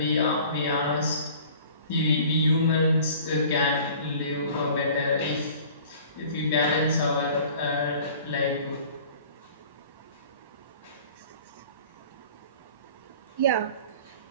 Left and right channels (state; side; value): inverted; both; correlation -0.47